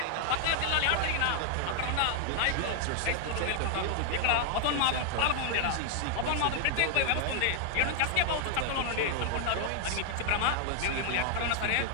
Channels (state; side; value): different; both; correlation 0.00